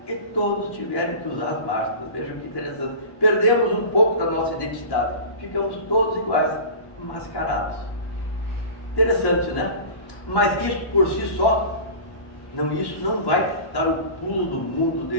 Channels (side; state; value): right; late; 1.1 ms